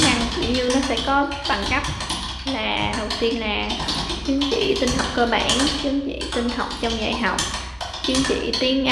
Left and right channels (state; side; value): identical; both; correlation 1.00